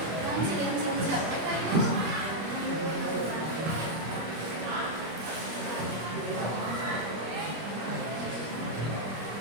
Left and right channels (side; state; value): left; late; 25 ms